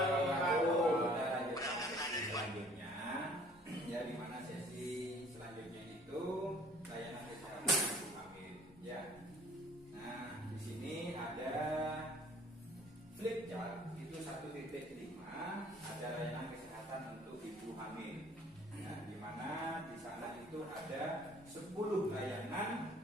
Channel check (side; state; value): both; normal; correlation 0.54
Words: wabarakatuh. Kita lanjutkan sesi selanjutnya, ya, di mana sesi selanjutnya itu layanan kesehatan ibu hamil, ya. Nah, di sini ada flip chart itu 1.5, ada layanan kesehatan untuk ibu hamil. Nah, di mana di sana itu ada 10 layanan